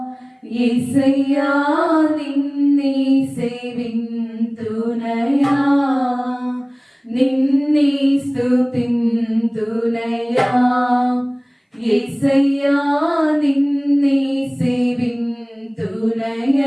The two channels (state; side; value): identical; both; correlation 1.00